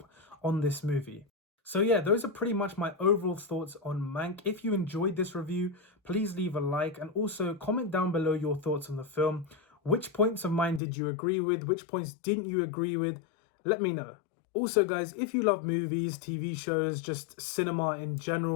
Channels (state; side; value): drops out; right; at 10.8 s